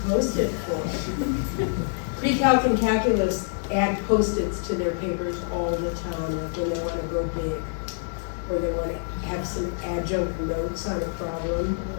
Post-it for? Pre-calc and calculus add Post-its to their papers all the time, like when they want to go big, or they want to have some adjunct notes on a problem.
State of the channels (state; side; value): silent; right; digital silence